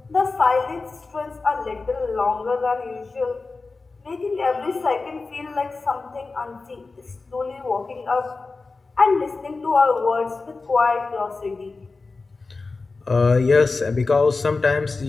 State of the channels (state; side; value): quieter; right; 3.9 dB